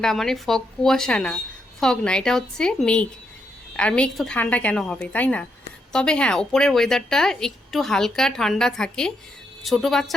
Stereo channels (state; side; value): normal; both; correlation 0.79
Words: মানে ফগ, কুয়াশা না, ফগ না, এটা হচ্ছে মেঘ। আর মেঘ তো ঠান্ডা কেন হবে, তাই না? তবে হ্যাঁ, ওপরের ওয়েদারটা একটু হালকা ঠান্ডা থাকে, ছোট